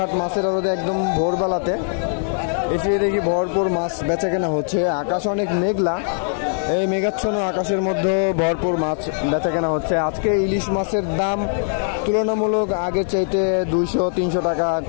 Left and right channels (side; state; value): right; silent; digital silence